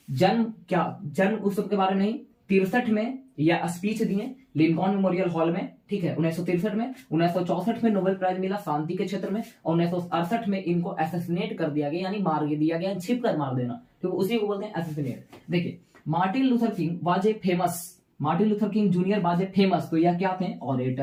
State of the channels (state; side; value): identical; both; correlation 1.00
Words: जन्म उत्सव के बारे में नहीं, 63 में यह स्पीच दिए लिंकॉन मेमोरियल हॉल में, ठीक है, 1963 में। 1964 में नोबेल प्राइज मिला शांति के क्षेत्र में। और 1968 में इनको एसेसिनेट कर दिया गया, यानी मार दिया गया, छिप कर मार देना, तो उसी को बोलते हैं एसेसिनेट। देखिए, Martin Luther king was a famous, Martin Luther King junior was a famous, तो यह क्या थे?